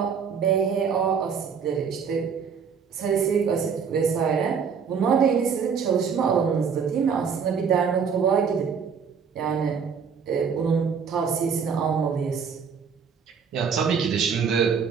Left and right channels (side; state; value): left; quieter; 6.4 dB